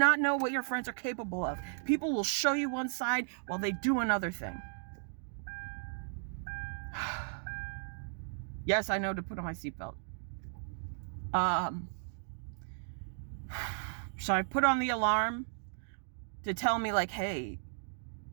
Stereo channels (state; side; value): silent; left; digital silence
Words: know what your friends are capable of. People will show you one side while they do another thing. Yes, I know to put on my seatbelt. So I put on the alarm to tell me, like, hey,